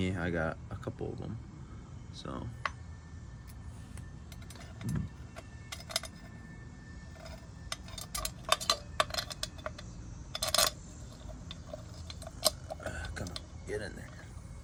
I got a couple of them. So come on, get in there.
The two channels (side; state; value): both; identical; correlation 1.00